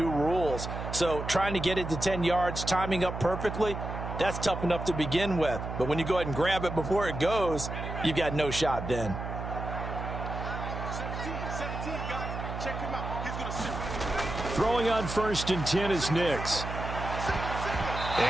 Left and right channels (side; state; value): right; noise; hum, 6 dB below the sound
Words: rules. So trying to get it to 10 yards, timing up perfectly, that's tough enough to begin with. But when you go ahead and grab it before it goes, you've got no shot then. Throwing on 1st and 10 is Nix.